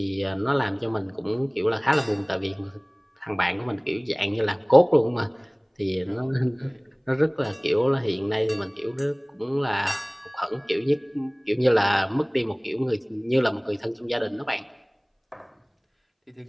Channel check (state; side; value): identical; both; correlation 1.00